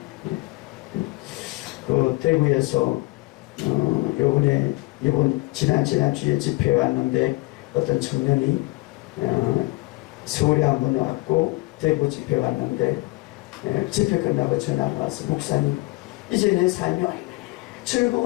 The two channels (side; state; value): right; quieter; 22.9 dB